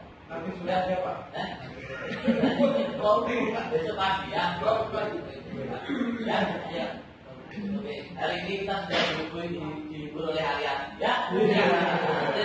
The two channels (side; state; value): both; identical; correlation 1.00